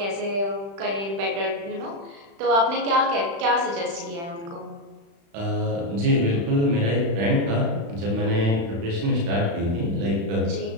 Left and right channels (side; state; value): left; late; 35 ms